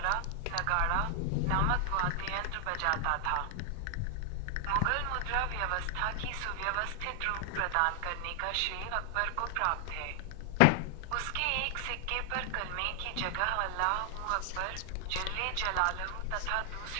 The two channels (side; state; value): both; different; correlation 0.00